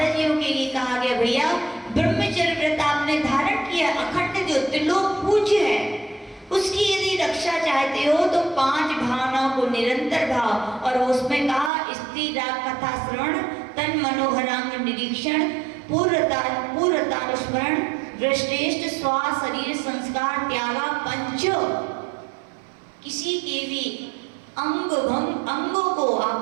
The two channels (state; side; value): drops out; left; at 11.7 s